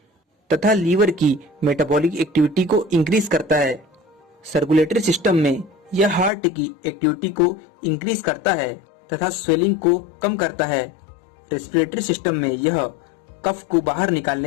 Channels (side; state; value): right; drops out; at 6.3 s